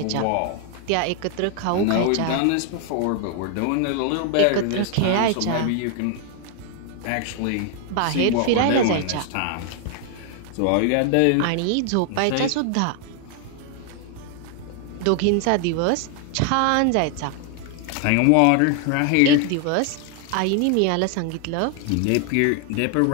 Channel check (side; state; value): both; different; correlation 0.00